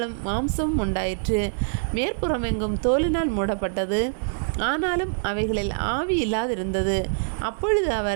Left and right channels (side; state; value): left; silent; digital silence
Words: மாம்சமும் உண்டாயிற்று. மேற்புறமெங்கும் தோலினால் மூடப்பட்டது. ஆனாலும் அவைகளில் ஆவி இல்லாதிருந்தது. அப்பொழுது